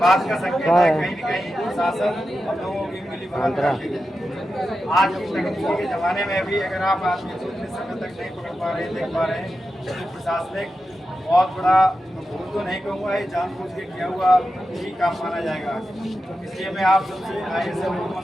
का संकेत है कहीं न कहीं प्रशासन हम लोगों की मिली भगत आज की तकनीकी के जमाने में भी अगर आप आदमी को इतने समय तक नहीं पकड़ पा रहे, देख पा रहे हैं, तो प्रशासनिक बहुत बड़ा भूल तो नहीं कहूँगा, ये जानबूझ के किया हुआ ही काम माना जाएगा। इसलिए मैं आप सबसे आए से लोगों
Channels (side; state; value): both; normal; correlation 0.91